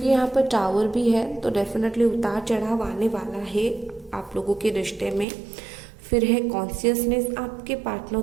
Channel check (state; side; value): drops out; left; at 5.2 s